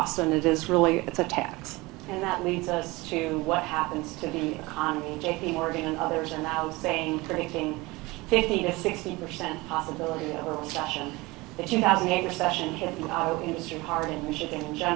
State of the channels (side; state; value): left; quieter; 22.4 dB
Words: and it's a tax. And that leads us to what happens to the economy. JP Morgan and others are now predicting 50 to 60% possibility of a recession. The 2008 recession hit the auto industry hard in Michigan in